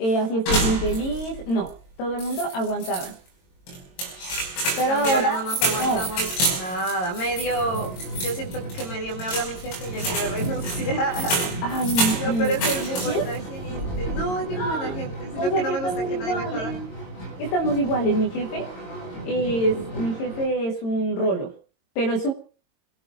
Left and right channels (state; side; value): late; right; 22 ms